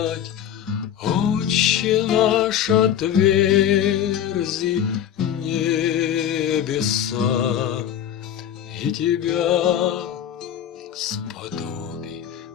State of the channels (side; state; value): right; quieter; 9.9 dB